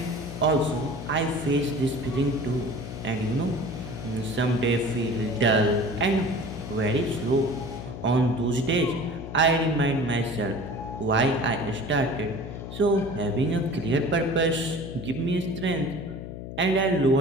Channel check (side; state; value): left; noise; hum, 9 dB below the sound